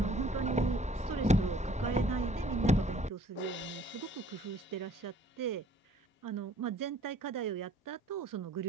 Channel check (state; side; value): normal; both; correlation 0.57